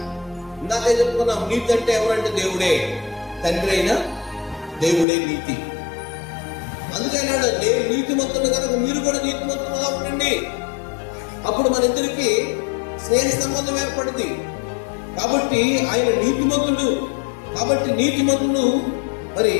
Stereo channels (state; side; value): drops out; right; at 5.1 s